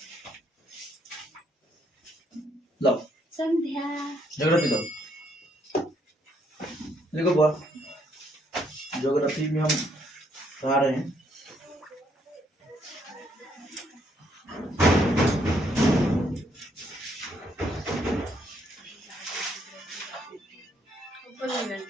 लो संध्या ज्योग्राफी लो। देखो बुआ, ज्योग्राफी में हम पढ़ा रहे हैं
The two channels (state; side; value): normal; both; correlation 0.71